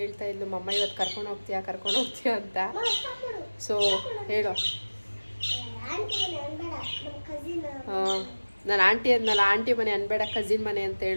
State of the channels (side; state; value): both; inverted; correlation -1.00